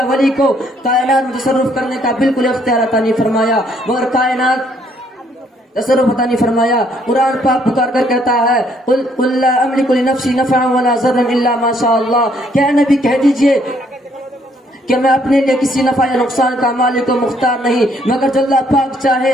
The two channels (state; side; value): normal; both; correlation 0.67